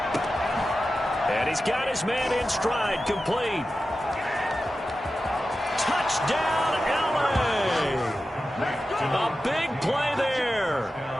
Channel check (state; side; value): normal; both; correlation 0.93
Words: And he's got his man in stride, complete. Touchdown, LA! A big play there